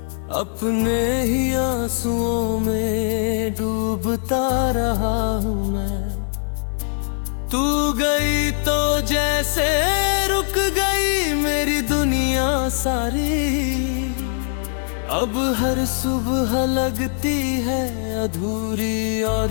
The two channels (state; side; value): silent; right; digital silence